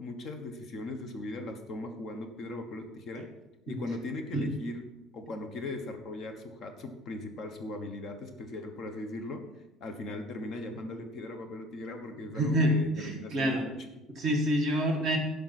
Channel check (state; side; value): normal; both; correlation 0.50